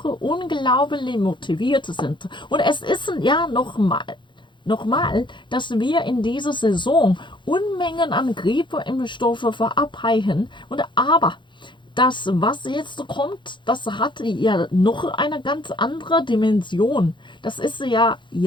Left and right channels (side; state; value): right; late; 0.23 ms